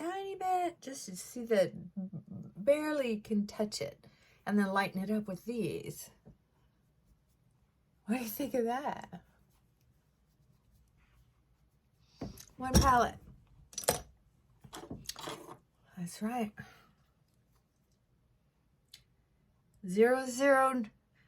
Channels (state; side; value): identical; both; correlation 1.00